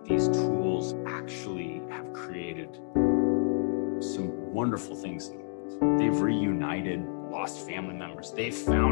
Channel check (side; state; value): right; silent; digital silence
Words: these tools actually have created some wonderful things in the world. They've reunited lost family members. They've